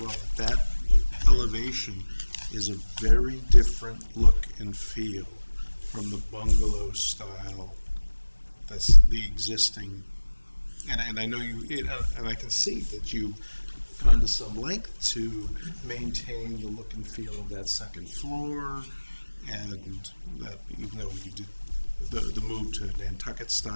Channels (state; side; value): inverted; both; correlation -1.00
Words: that elevation is a very different look and feel from the bungalow style that's the existing. And I know and I can see that you gone to some length to maintain the look and feel of that second floor, and that even though you did the move to Nantucket